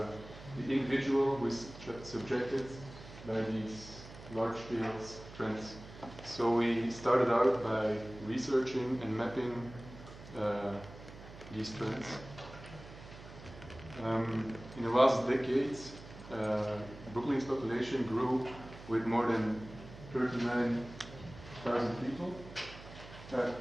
individual who is subjected by these large-scale trends. So we started out by researching and mapping these trends. In the last decades, Brooklyn's population grew with more than 39,000 people.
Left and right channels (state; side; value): noise; right; hum, 16 dB below the sound